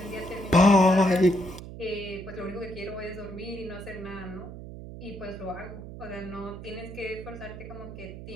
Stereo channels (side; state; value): right; noise; hum, 12 dB below the sound